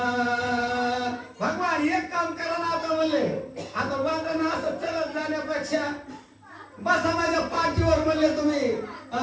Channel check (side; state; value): both; identical; correlation 1.00